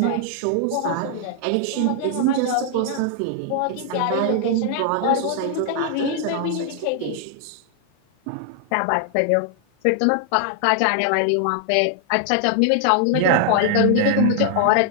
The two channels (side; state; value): both; different; correlation 0.00